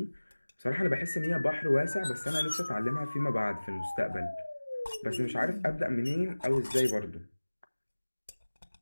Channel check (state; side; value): inverted; both; correlation -1.00